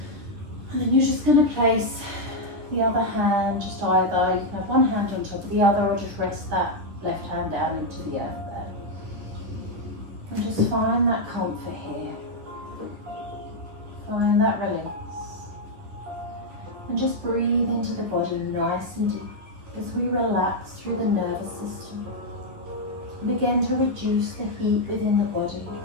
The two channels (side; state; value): left; late; 10 ms